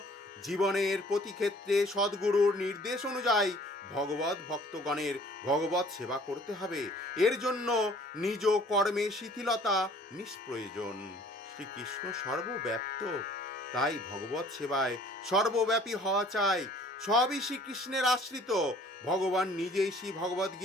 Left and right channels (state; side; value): normal; both; correlation 0.54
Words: জীবনের প্রতি ক্ষেত্রে সদ্গুরুর নির্দেশ অনুযায়ী ভগবত ভক্তগণের ভগবত সেবা করতে হবে। এর জন্য নিজ কর্মে শিথিলতা নিষ্প্রয়োজন। শ্রীকৃষ্ণ সর্বব্যাপ্ত, তাই ভগবত সেবায় সর্বব্যাপী হওয়া চাই। সবই শ্রীকৃষ্ণের আশ্রিত। ভগবান নিজেই শ্রী ভগবদ